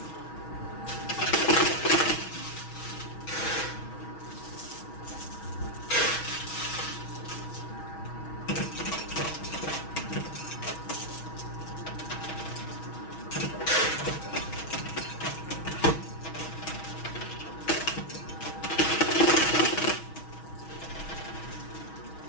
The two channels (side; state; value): right; late; 6.2 ms